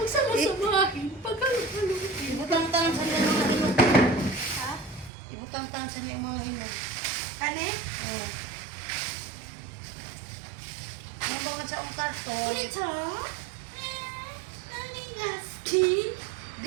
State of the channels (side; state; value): left; drops out; at 5.1 s